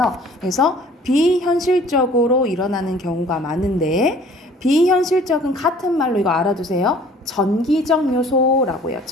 그래서 비현실적으로 일어나는 경우가 많은데, 비현실적은 같은 말로 이거 알아두세요. 전기적 요소라고 해요.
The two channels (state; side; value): normal; both; correlation 0.52